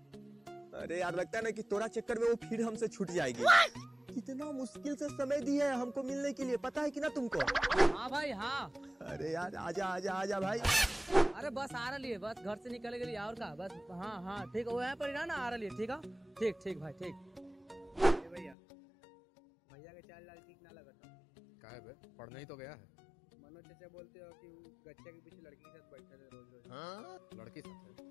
अरे यार लगता है ना कि तोरा चक्कर में वो फिर हमसे छूट जाएगी। कितना मुश्किल से समय दिया है हमको मिलने के लिए, पता है कि ना तुमको? हाँ भाई हाँ। अरे यार आजा आजा आजा भाई। अरे बस आ रही है, बस घर से निकले के लिए और का बस। हाँ हाँ ठीक है, वो यहाँ पर ही ना आ रही है। ठीक है, ठीक ठीक भाई ठीक। भैया भैया के चाल लाल ठीक ना लगा था। क्या है बे, पढ़ने ही तो गया है। मनोज चाचा बोलते हो कि गच्चे के पीछे लड़की के साथ बैठा था रोज रोज। हाँ? लड़की साथ है?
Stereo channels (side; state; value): right; drops out; at 18.6 s